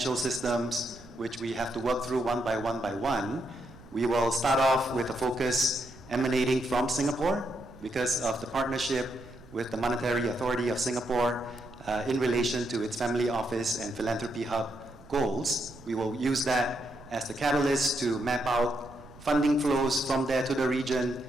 systems, which we have to work through one by one. We will start off with a focus emanating from Singapore because of the partnership with the Monetary Authority of Singapore in relation to its Family Office and Philanthropy Hub goals. We will use that as the catalyst to map out funding flows from there to the region.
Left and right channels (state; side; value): noise; right; rumble, 22 dB below the sound